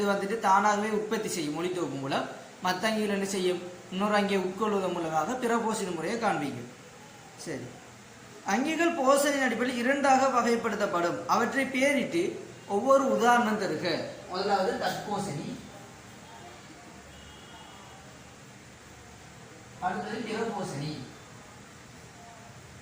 வந்துட்டு தானாகவே உற்பத்தி செய்யும் ஒளித்தொகுப்பு மூலம், மற்ற அங்கிகள் என்ன செய்யும், இன்னொரு அங்கே உட்கொள்வதன் மூலமாக பிற போஷண முறையை காண்பிக்கும். சரி, அங்கிகள் போஷணின் அடிப்படையில் 2ஆக வகைப்படுத்தப்படும். அவற்றை பேரிட்டு ஒவ்வொரு உதாரணம் தருக. முதலாவது தற்போஷணி, அடுத்தது பிறபோஷணி.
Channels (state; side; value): identical; both; correlation 1.00